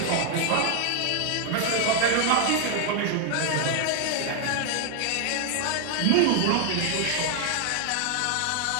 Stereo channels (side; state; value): both; different; correlation 0.00